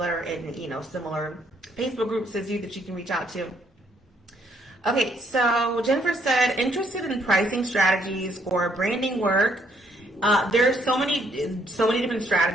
that are in similar Facebook groups as you that you can reach out to. Okay, so Jennifer said, interested in pricing strategies for branding work. There's so many different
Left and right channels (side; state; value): both; normal; correlation 0.69